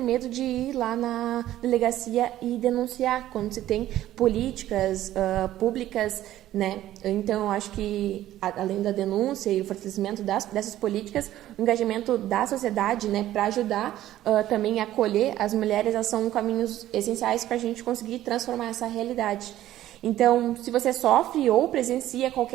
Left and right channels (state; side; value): quieter; left; 13.6 dB